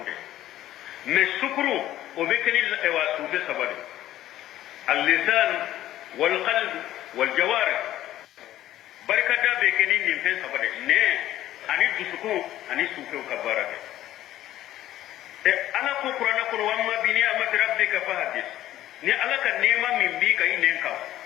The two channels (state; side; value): quieter; right; 13.6 dB